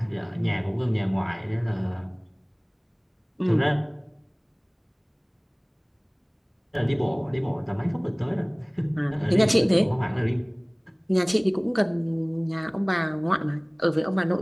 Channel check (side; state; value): both; identical; correlation 1.00